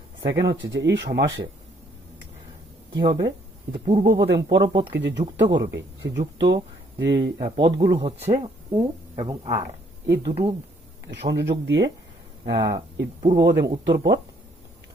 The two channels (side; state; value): both; normal; correlation 0.66